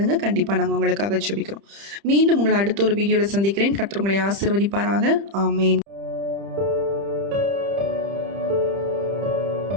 கண்டிப்பாக நாங்கள் உங்களுக்காக ஜெபிக்கிறோம். மீண்டும் உங்களை அடுத்த ஒரு வீடியோவில் சந்திக்கிறேன். கர்த்தர் உங்களை ஆசீர்வதிப்பாராக. ஆமேன்.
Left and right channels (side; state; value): left; late; 30 ms